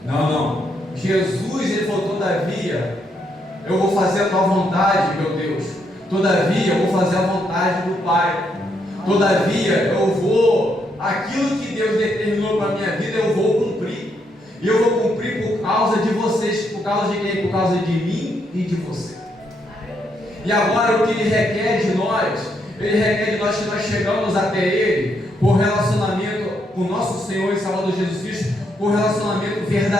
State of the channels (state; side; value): normal; both; correlation 0.76